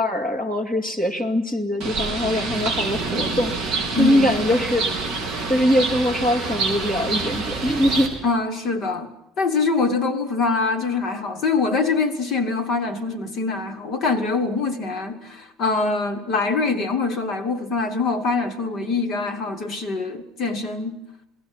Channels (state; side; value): normal; both; correlation 0.47